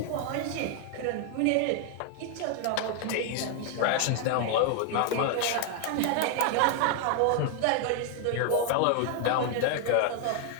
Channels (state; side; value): different; both; correlation 0.00